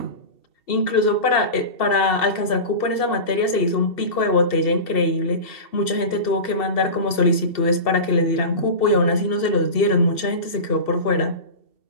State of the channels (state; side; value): late; right; 2.7 ms